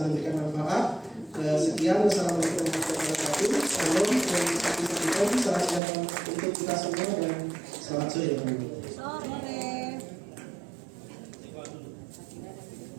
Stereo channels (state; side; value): drops out; left; at 5.8 s